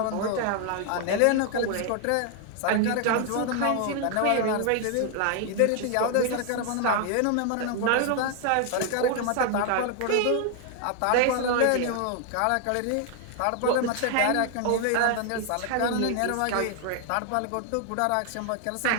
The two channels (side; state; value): both; different; correlation 0.00